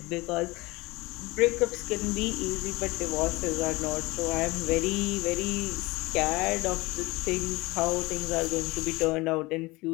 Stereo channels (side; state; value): right; quieter; 22.3 dB